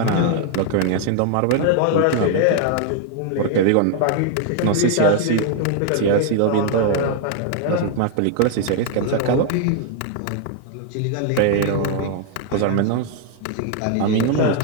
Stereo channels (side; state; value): both; different; correlation 0.00